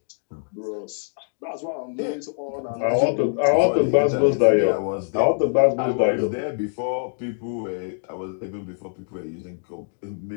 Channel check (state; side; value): silent; right; digital silence